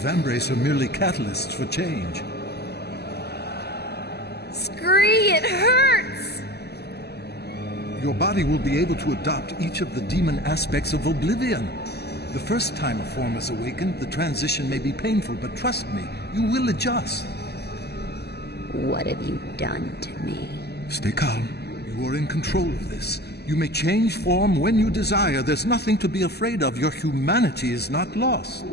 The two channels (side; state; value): right; late; 0.47 ms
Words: are merely catalysts for change. Scree, it hurts! Your body will be able to adopt each of the demon aspects of oblivion. The first time a form is awakened, the transition may be painful, but trust me, you will adjust. What have you done to me? Stay calm. You are in control of this. You may change form when you desire. There's nothing to be afraid of. Your humanity is not lost.